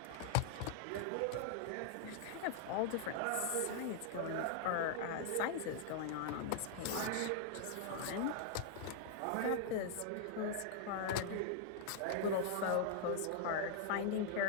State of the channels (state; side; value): different; both; correlation -0.01